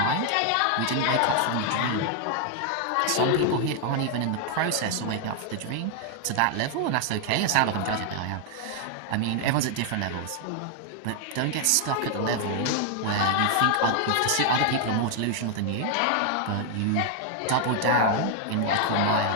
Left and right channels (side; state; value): both; different; correlation 0.00